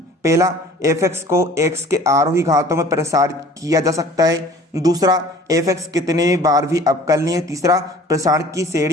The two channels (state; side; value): normal; both; correlation 0.48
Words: पहला f(x) को x के आरोही घातों में प्रसारित किया जा सकता है, दूसरा f(x) कितने बार भी अवकलनीय है, तीसरा प्रसारण की